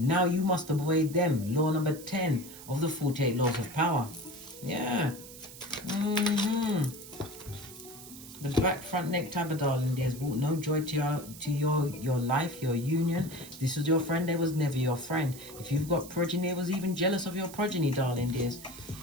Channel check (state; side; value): noise; right; hiss, 16 dB below the sound